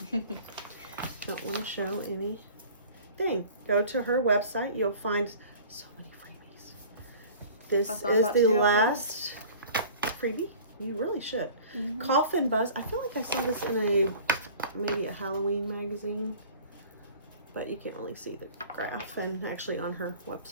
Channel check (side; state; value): both; inverted; correlation -0.45